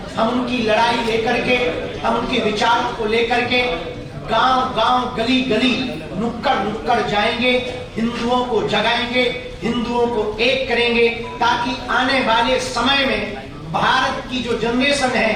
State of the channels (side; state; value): both; identical; correlation 1.00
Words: हम उनकी लड़ाई लेकर के, हम उनके विचारों को लेकर के गांव गांव, गली गली, नुक्कड़ नुक्कड़ जाएंगे, हिंदुओं को जगाएंगे, हिंदुओं को एक करेंगे, ताकि आने वाले समय में भारत की जो जनरेशन